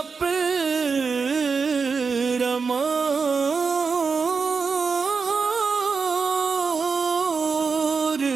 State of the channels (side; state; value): left; quieter; 5.1 dB